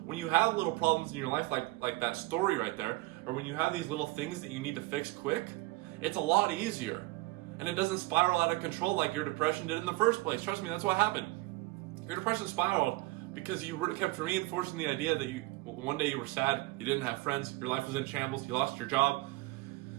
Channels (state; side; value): quieter; left; 21.2 dB